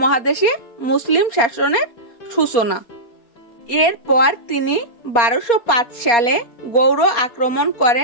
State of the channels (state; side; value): late; right; 4.3 ms